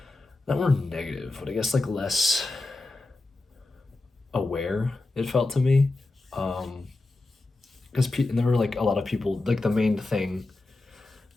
negative, but I guess like less aware. It felt to me, because and there were like a lot of people. Like the main thing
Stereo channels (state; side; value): quieter; right; 3.1 dB